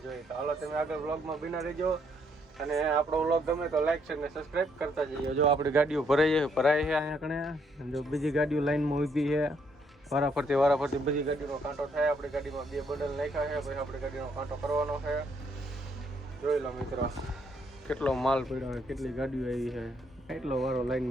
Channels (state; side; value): normal; both; correlation 0.71